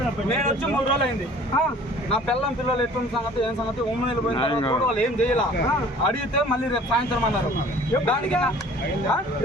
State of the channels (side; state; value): both; normal; correlation 0.49